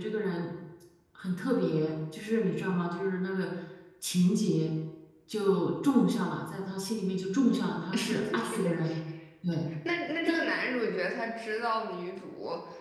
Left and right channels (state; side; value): identical; both; correlation 1.00